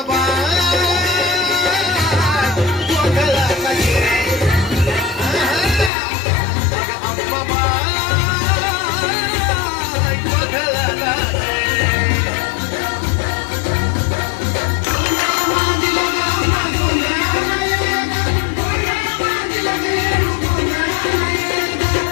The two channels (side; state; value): right; drops out; at 5.9 s